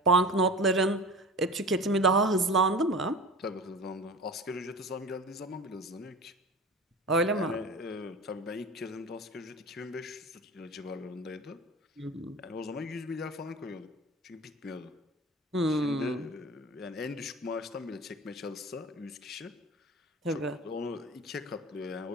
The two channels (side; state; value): both; normal; correlation 0.34